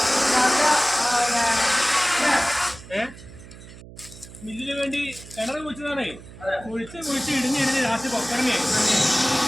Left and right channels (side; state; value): right; noise; hum, 18 dB below the sound